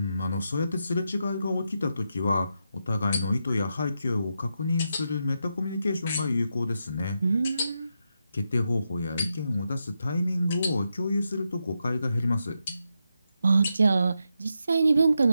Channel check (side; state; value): both; inverted; correlation -0.85